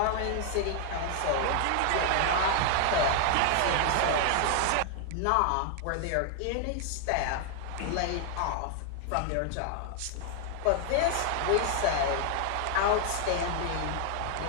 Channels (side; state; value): both; different; correlation 0.00